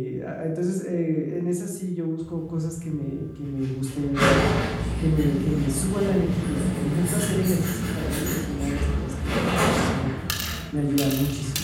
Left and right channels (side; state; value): both; identical; correlation 1.00